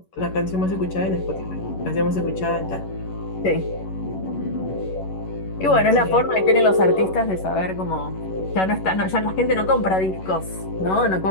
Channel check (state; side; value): late; right; 11 ms